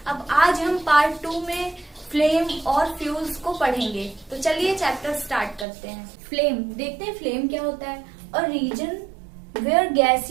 अब आज हम पार्ट 2 में फ्लेम और फ्यूल्स को पढ़ेंगे। तो चलिए चैप्टर स्टार्ट करते हैं। फ्लेम देखते हैं फ्लेम क्या होता है। और region where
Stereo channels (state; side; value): drops out; left; at 5.7 s